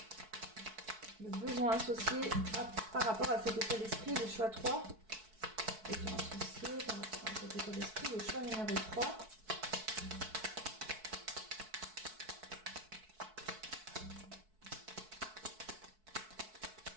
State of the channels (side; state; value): left; late; 4.6 ms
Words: Le besoin associé par rapport à cet état d'esprit, le choix 3. Le besoin associé par rapport à cet état d'esprit, le choix numéro 3.